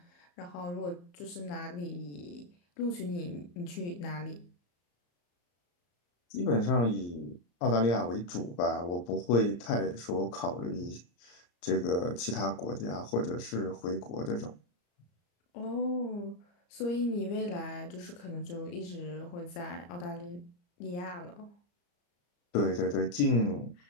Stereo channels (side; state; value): right; late; 34 ms